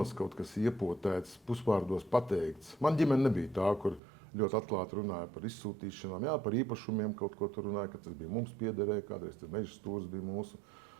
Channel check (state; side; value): drops out; left; at 4.0 s